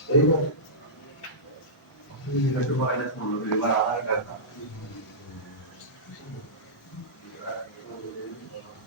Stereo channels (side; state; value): both; normal; correlation -0.17